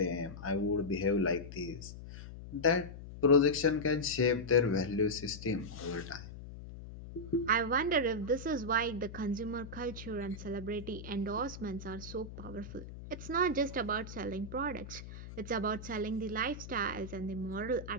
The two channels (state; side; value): noise; left; hum, 12 dB below the sound